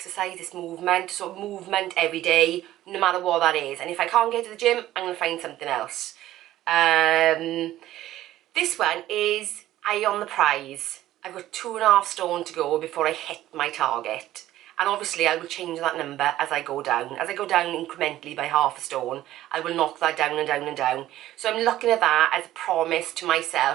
it's movement. So movement every day, no matter what that is. And if I can't get to the gym, I'm going to find something else. This one is eye on the prize. I've got 2.5 stone to go before I hit my target. And obviously I will change that number as I go down. As I go down incrementally by 0.5 stone, I will knock that down and down and down. So I'm looking at that as a promise to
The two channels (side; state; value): left; quieter; 14.2 dB